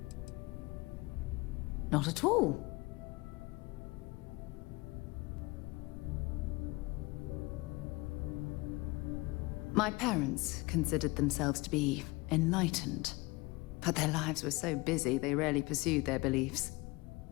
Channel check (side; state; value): right; quieter; 23.5 dB